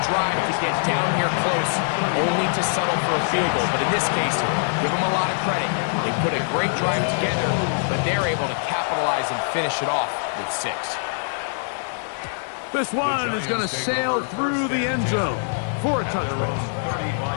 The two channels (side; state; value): right; silent; digital silence